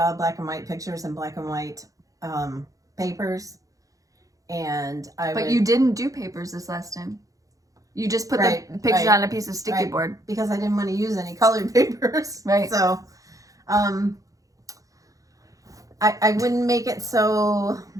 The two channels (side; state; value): left; late; 0.17 ms